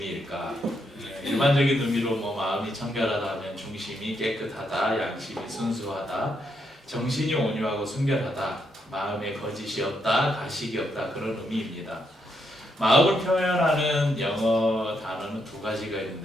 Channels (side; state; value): both; normal; correlation 0.78